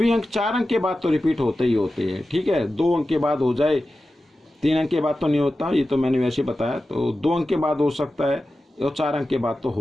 अंक 4 अंक के बाद तो रिपीट होते ही होते हैं, ठीक है। 2 अंक के बाद हो जाए, 3 अंक के बाद तो नहीं होता, ये तो मैंने वैसे बताया। तो 2 अंक के बाद हो सकता है और 4 अंक के बाद तो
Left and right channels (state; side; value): normal; both; correlation 0.93